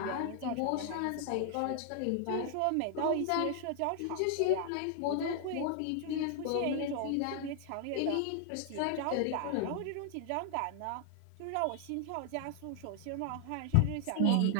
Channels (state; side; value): different; both; correlation 0.00